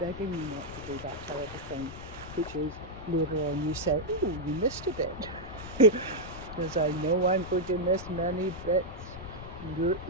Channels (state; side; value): noise; left; rumble, 13 dB below the sound